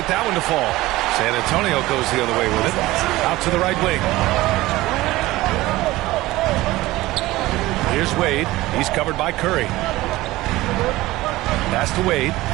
that one to fall. San Antonio goes the other way with it. Out to the right wing. Here's Wade. He's covered by Curry. Pass to Wade.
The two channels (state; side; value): quieter; left; 18.1 dB